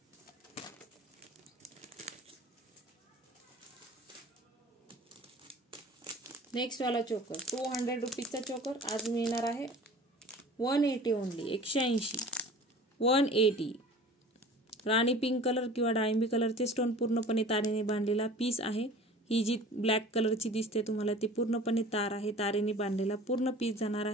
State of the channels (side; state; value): both; normal; correlation 0.43